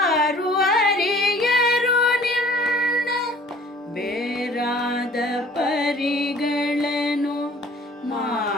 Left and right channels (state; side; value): normal; both; correlation 0.52